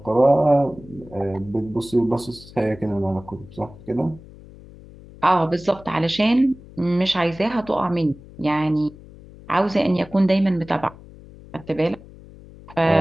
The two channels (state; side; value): noise; left; hum, 20 dB below the sound